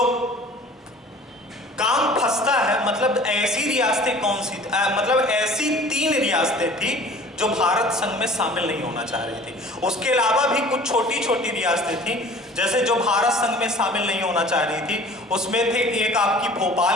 काम फंसता है, मतलब ऐसी रियासतें कौन सी, मतलब ऐसी 3 रियासतें थी जो भारत संघ में शामिल नहीं होना चाह रही थी। उसके अलावा भी कुछ छोटी छोटी रियासतें थी जैसे जो भारत संघ में शामिल नहीं होना चाह रही थी। उसमें थे एक आपकी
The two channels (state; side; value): normal; both; correlation 0.47